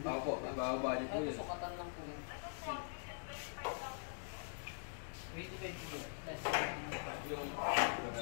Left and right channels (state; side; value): silent; right; digital silence